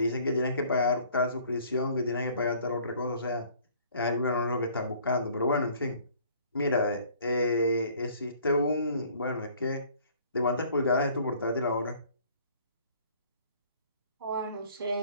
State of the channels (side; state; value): both; inverted; correlation -0.55